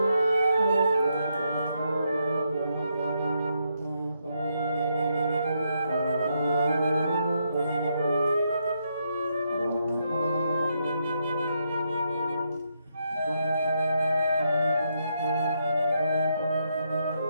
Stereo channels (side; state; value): both; inverted; correlation -0.79